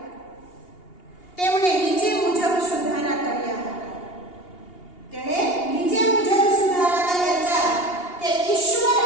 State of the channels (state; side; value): late; right; 2.8 ms